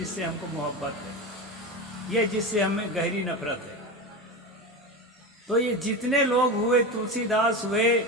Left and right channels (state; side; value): normal; both; correlation 0.22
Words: हमको मोहब्बत है, ये जिससे हमें गहरी नफरत है। तो ये जितने लोग हुए, तुलसीदास हुए,